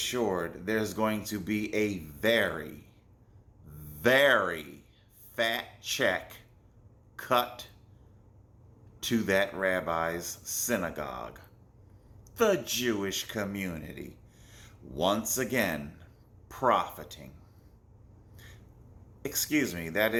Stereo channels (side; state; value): both; identical; correlation 1.00